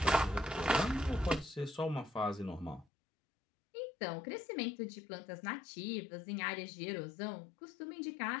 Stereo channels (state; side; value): drops out; right; at 2.9 s